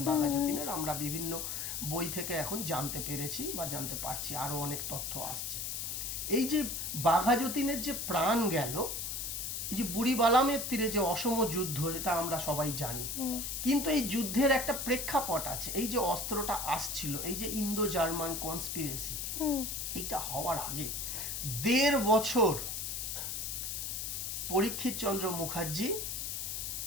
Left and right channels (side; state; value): left; noise; hiss, 3 dB below the sound